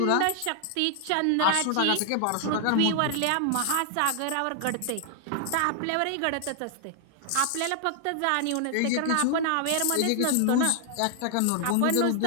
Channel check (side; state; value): both; different; correlation 0.00